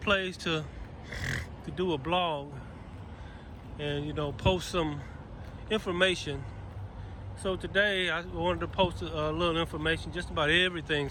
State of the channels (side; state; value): both; identical; correlation 1.00